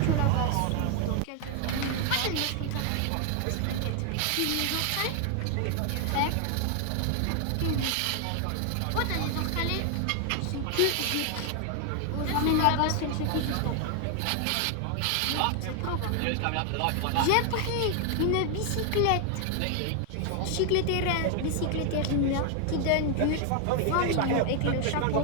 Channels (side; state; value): both; different; correlation 0.00